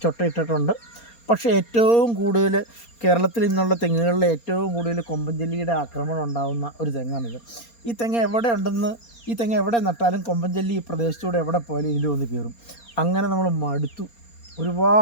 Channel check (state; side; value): late; right; 4.3 ms